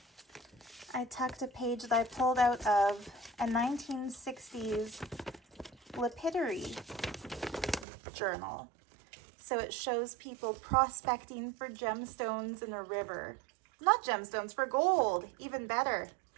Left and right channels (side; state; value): left; drops out; at 7.9 s